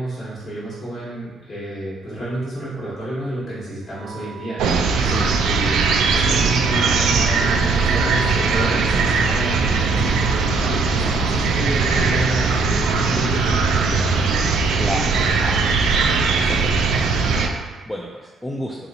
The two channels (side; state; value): left; quieter; 3.8 dB